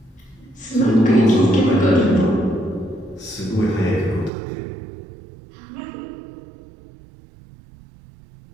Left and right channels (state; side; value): drops out; left; at 4.3 s